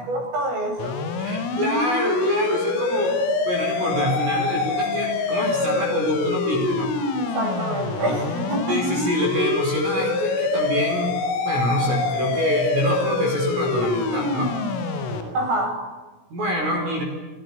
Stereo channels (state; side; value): late; left; 16 ms